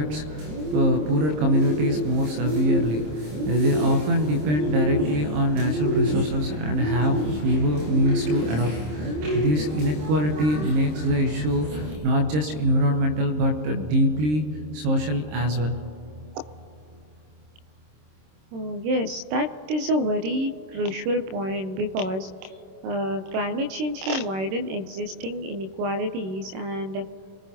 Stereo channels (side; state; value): left; late; 26 ms